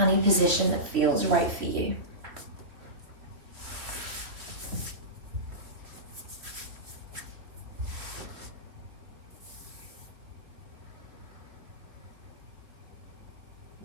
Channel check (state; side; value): late; left; 3.2 ms